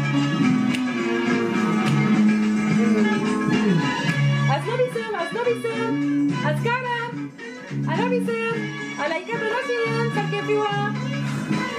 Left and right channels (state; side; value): identical; both; correlation 1.00